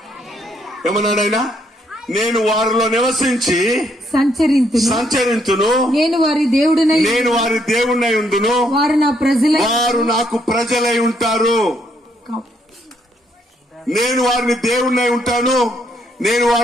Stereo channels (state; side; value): normal; both; correlation 0.72